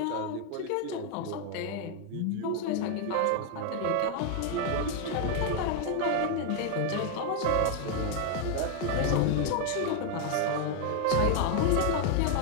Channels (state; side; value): different; both; correlation 0.01